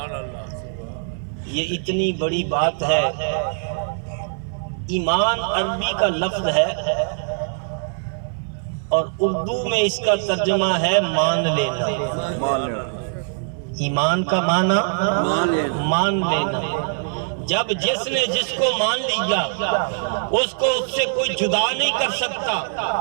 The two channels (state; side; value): silent; left; digital silence